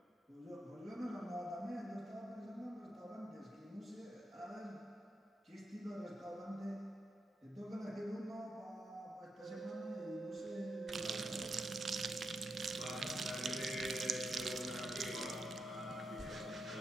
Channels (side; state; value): both; normal; correlation 0.85